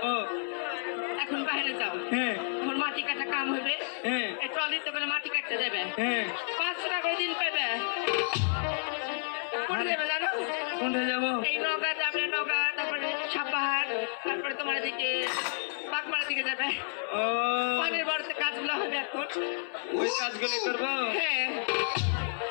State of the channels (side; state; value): right; silent; 57 dB below the other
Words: ও এখন বাইরে যাও হ্যাঁ এখন মাটি কাটা কাম হবে হ্যাঁ এই ট্রলিতে করে মাটি কাটতে যাবে হ্যাঁ 500 টাকা করে দিন পাবে কোথায় যাবে জানো কোনটা যাবো এই নৌকা যাবে নৌকা তারপরে সাপাহার তারপরে তোমার দিকে বাগমার দিকে যাবে ও পানির বাড়িতে কাজগুলো হবে এখন ওই কাজগুলো করবো হ্যাঁ